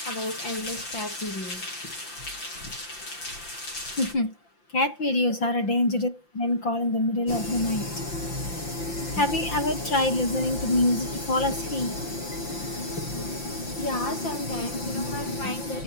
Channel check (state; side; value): late; right; 5.8 ms